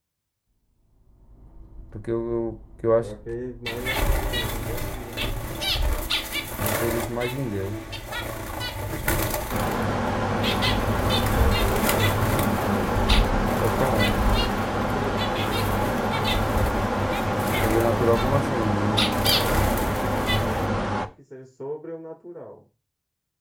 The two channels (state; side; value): identical; both; correlation 1.00